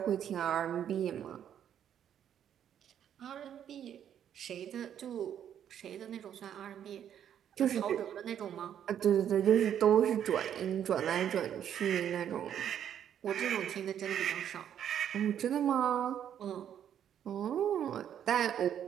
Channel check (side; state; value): left; quieter; 9.6 dB